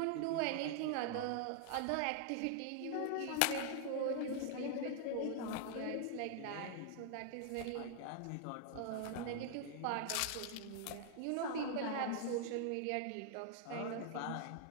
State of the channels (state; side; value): different; both; correlation 0.00